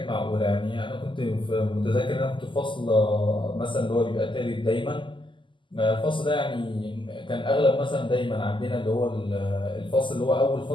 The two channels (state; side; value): late; right; 0.24 ms